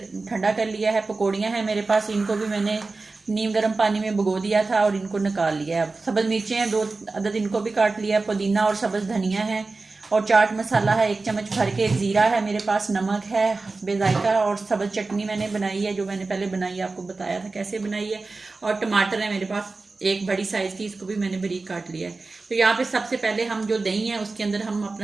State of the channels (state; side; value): quieter; left; 3.7 dB